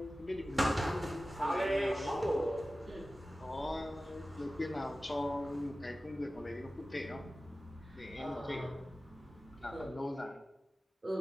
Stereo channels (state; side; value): normal; both; correlation 0.96